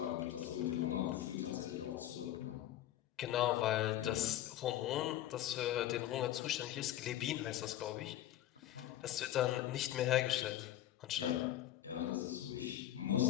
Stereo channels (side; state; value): right; quieter; 12.9 dB